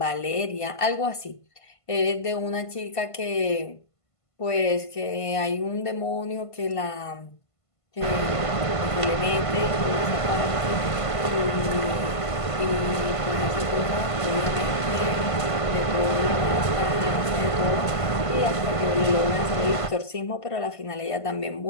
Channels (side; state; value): right; late; 1.5 ms